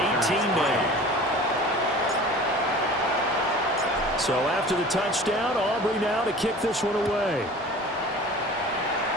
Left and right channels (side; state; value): both; normal; correlation 0.41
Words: 18 now. So after the touchdown, Aubrey now to kick this one away.